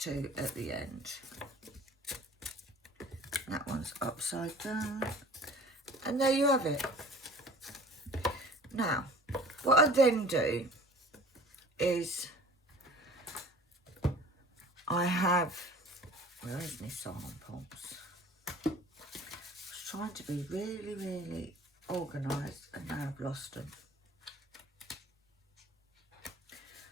at the end. That one's upside down, and there you have it. Now, what I then do is I have, where is my samples? I was trying to be really organised, and now I've lost them.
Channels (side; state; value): both; normal; correlation 0.46